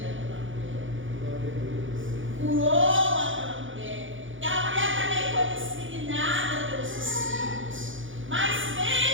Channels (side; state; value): left; late; 0.56 ms